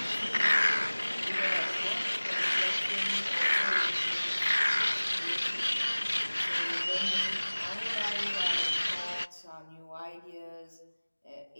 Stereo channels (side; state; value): both; inverted; correlation -1.00